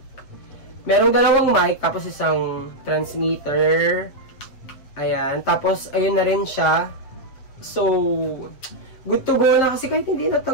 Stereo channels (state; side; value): late; right; 7.7 ms